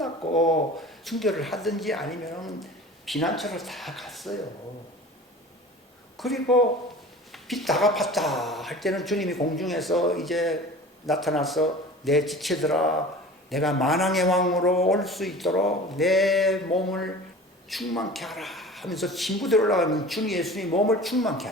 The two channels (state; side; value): normal; both; correlation 0.40